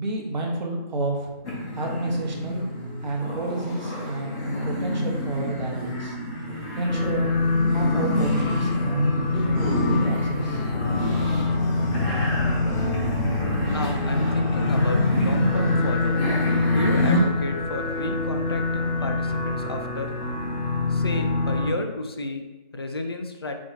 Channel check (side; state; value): both; inverted; correlation -0.64